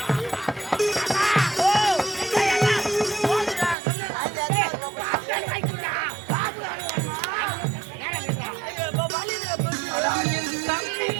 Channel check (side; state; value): left; drops out; at 3.8 s